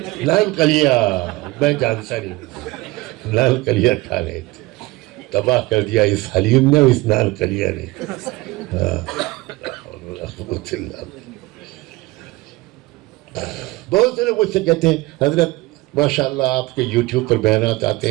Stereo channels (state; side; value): quieter; left; 20.6 dB